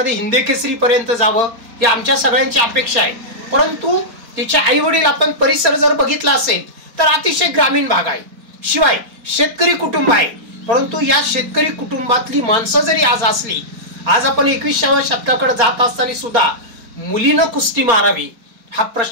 हिंदी केसरी पर्यंत जावं ही आमच्या सगळ्यांची अपेक्षा आहे. परंतु तिचे आई वडील आपण परिसर जर बघितला असेल तर अतिशय ग्रामीण भाग आहे, शिवाय शेतकरी कुटुंब आहे. परंतु या शेतकरी कुटुंबातली माणसं जरी आज असली, आज आपण 21व्या शतकाकडे जात असताना सुद्धा मुलीनं कुस्ती मारावी हा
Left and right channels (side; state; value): left; late; 4.3 ms